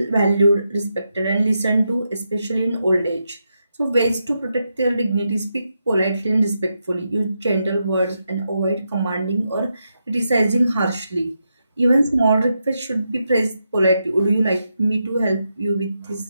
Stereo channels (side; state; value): both; inverted; correlation -0.84